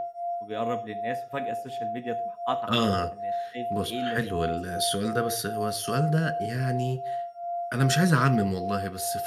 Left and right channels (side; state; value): both; identical; correlation 1.00